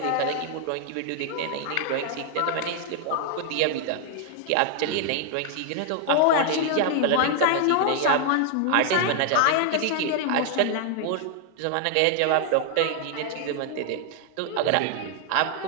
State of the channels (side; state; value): both; different; correlation 0.00